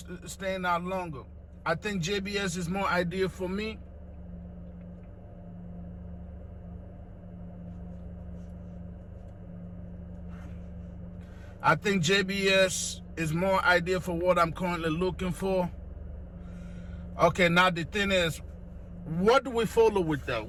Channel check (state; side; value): identical; both; correlation 1.00